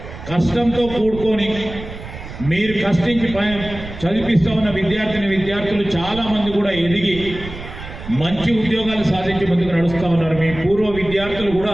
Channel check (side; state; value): right; noise; rumble, 12 dB below the sound